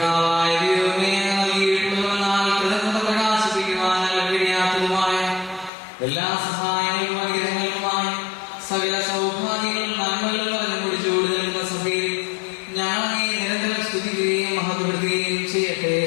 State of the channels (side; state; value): right; drops out; at 5.7 s